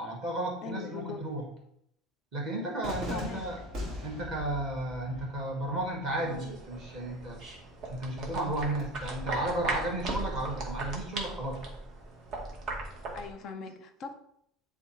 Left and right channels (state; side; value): normal; both; correlation 0.31